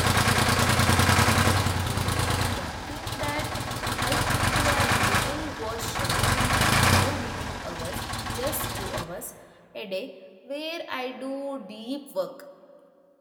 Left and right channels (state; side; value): identical; both; correlation 1.00